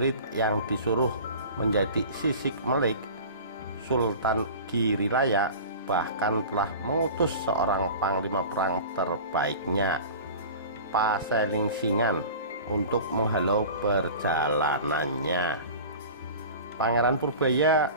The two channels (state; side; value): inverted; both; correlation -0.37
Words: yang disuruh menjadi sisik melik, Sultan Girilaya bahkan telah mengutus seorang panglima perang terbaiknya, Paselingsingan, untuk menghalau perjalanannya. Pangeran Purbaya